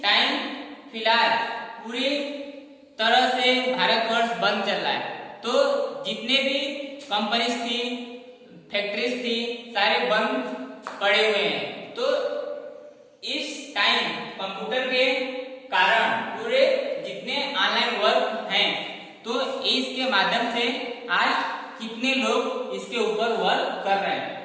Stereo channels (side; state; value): both; identical; correlation 1.00